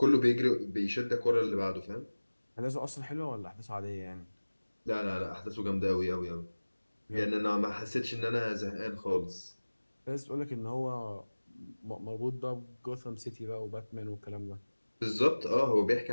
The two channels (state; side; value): inverted; both; correlation -1.00